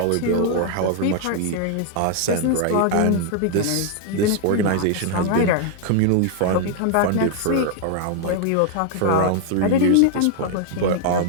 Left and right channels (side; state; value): both; different; correlation 0.00